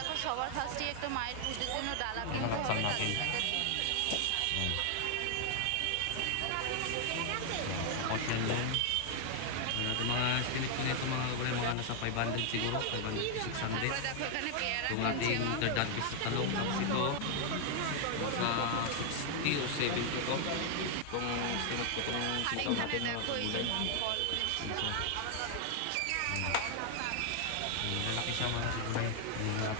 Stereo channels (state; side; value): different; both; correlation 0.00